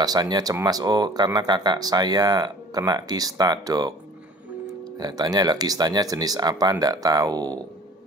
cemas. Oh, karena kakak saya kena kista, dok. Saya tanya lah, kistanya jenis apa? Nggak tahu.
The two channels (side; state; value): both; normal; correlation 0.47